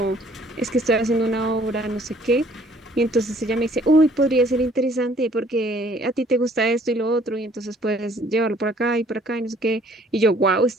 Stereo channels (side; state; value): both; normal; correlation 0.59